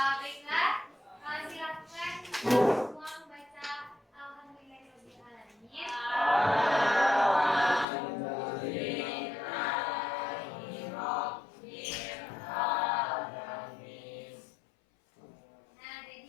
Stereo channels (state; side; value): drops out; right; at 7.9 s